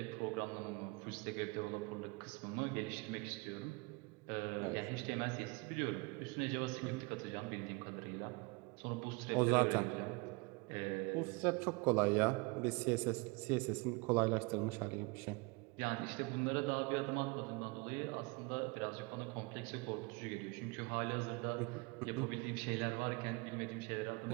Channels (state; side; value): quieter; left; 27.3 dB